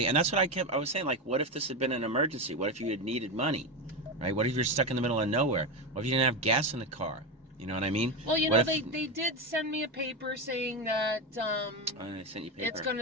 and that's what I was saying, like, what if this had been an emergency? What if you had needed money, right? What if you're stuck in the middle of nowhere? What if you didn't have gas in the car? You know what I mean? Well, you know, they did send me a paper saying that they sent you paper. It's going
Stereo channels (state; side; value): normal; both; correlation 0.15